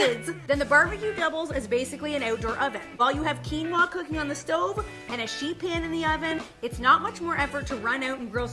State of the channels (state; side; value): identical; both; correlation 1.00